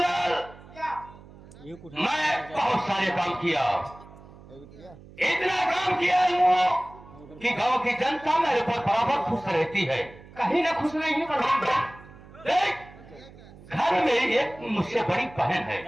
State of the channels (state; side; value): noise; right; hum, 20 dB below the sound